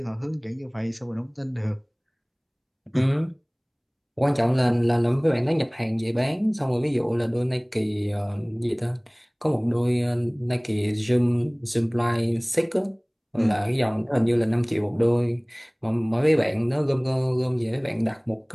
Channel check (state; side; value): identical; both; correlation 1.00